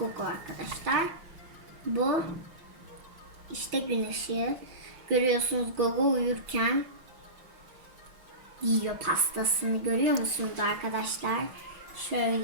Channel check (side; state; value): left; late; 5.6 ms